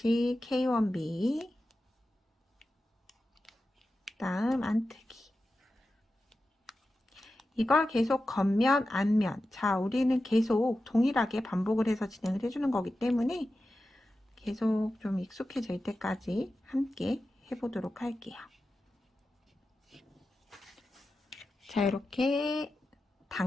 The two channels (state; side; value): normal; both; correlation 0.93